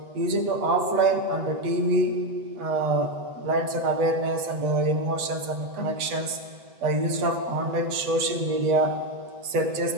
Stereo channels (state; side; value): late; left; 7.9 ms